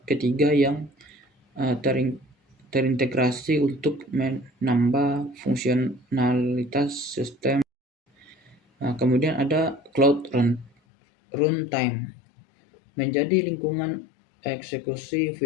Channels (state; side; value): drops out; right; at 10.7 s